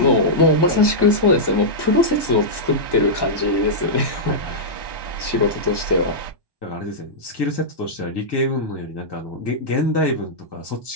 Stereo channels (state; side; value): late; right; 1.1 ms